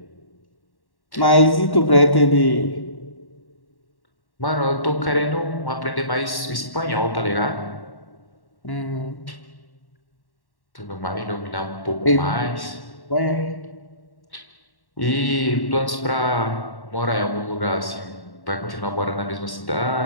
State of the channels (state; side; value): late; right; 1.1 ms